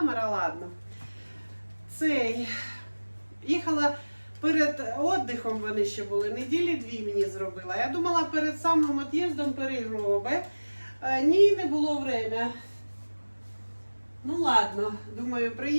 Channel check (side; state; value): both; inverted; correlation -1.00